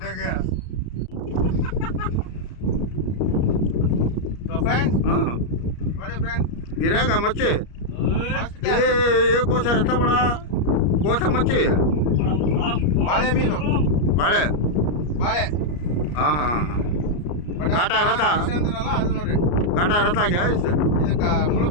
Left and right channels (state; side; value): late; right; 34 ms